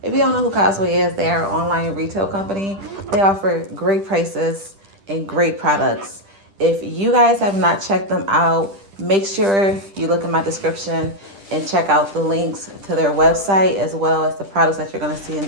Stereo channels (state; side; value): late; left; 10 ms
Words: If you don't know who Costway is, they are an online retail company. They offer great prices and great products. If you guys have not checked them out, make sure you look in my description and check out the links to their website as well as the products that you're going to see in